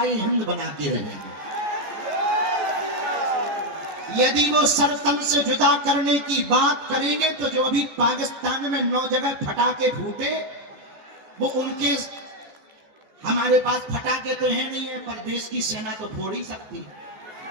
हिंद बना के रहेंगे। यदि वो सरतन से जुदा करने की बात करेंगे तो जो अभी पाकिस्तान में 9 जगह फटाके फूटे, वो उनके, हमारे पास फटाके तो है नहीं है, पर देश की सेना तो फोड़ ही सकती है।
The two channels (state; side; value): late; left; 15 ms